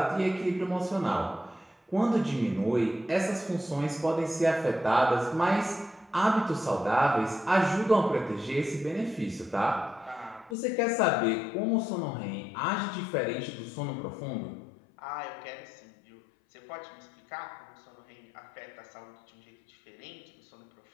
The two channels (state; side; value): drops out; right; at 10.6 s